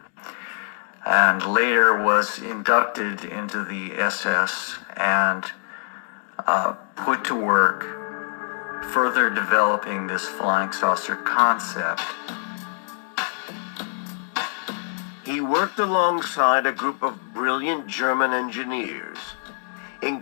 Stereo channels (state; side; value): silent; right; digital silence